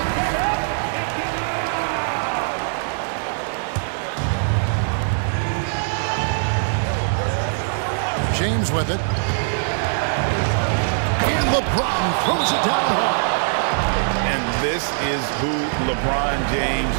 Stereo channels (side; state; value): left; silent; digital silence